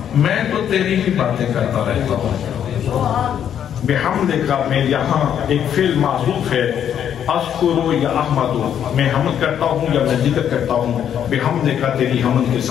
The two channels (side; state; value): right; quieter; 9.3 dB